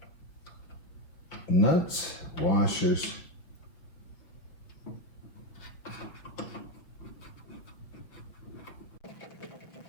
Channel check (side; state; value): right; late; 6.1 ms